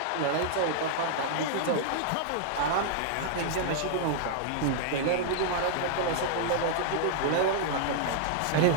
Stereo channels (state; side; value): different; both; correlation -0.01